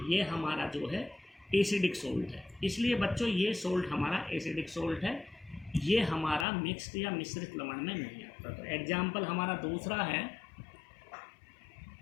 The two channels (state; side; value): drops out; right; at 6.5 s